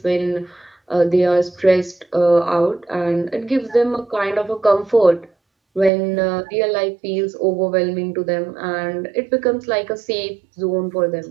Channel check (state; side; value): drops out; left; at 5.9 s